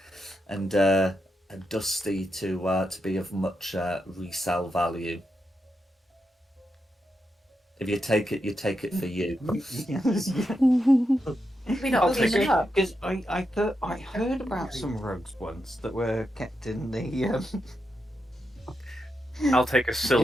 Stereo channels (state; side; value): normal; both; correlation 0.85